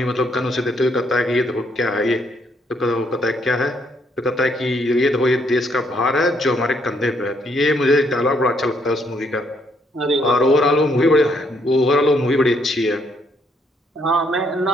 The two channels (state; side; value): normal; both; correlation 0.71